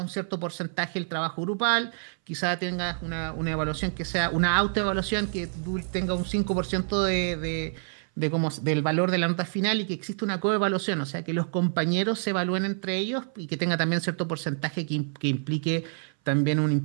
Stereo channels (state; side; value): silent; left; 58 dB below the other